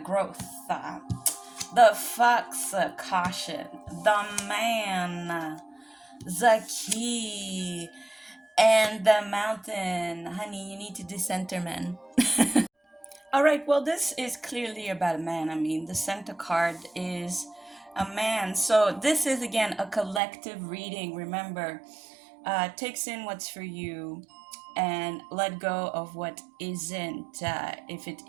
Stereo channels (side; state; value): left; drops out; at 20.2 s